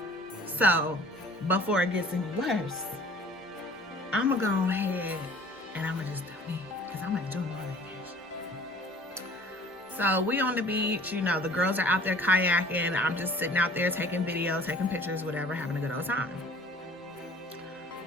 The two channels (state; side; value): normal; both; correlation 0.50